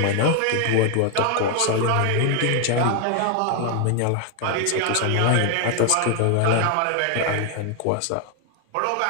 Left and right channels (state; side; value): different; both; correlation 0.01